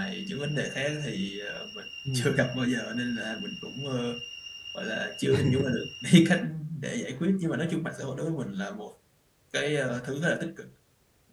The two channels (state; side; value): identical; both; correlation 1.00